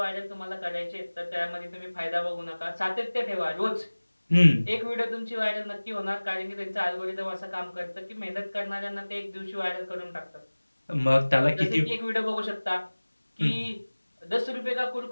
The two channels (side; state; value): both; inverted; correlation -1.00